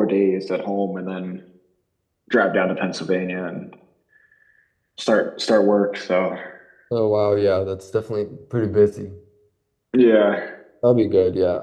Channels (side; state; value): both; identical; correlation 1.00